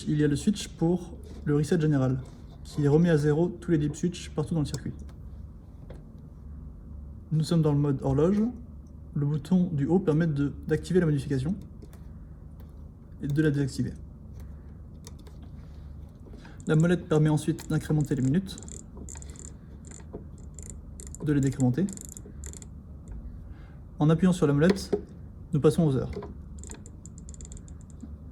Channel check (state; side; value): identical; both; correlation 1.00